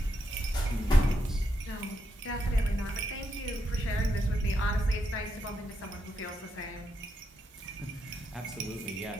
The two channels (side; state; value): both; normal; correlation 0.82